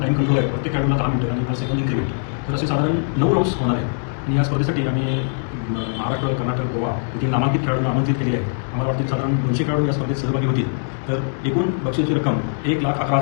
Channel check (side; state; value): right; silent; 65 dB below the other